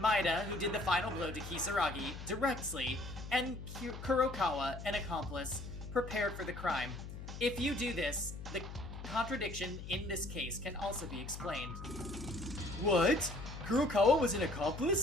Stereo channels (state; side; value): noise; left; hum, 10 dB below the sound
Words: who did the final blow to Kisaragi, directly, and Kurokawa, an accomplice, prepared for the crime. If you do this, the contradiction in this case can also be explained. What? Kurokawa was an